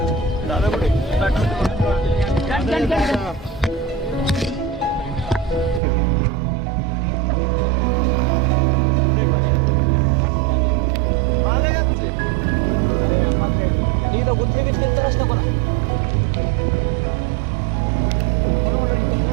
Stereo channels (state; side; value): drops out; left; at 5.8 s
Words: इथं गुंथे बिंथे तरच नको ना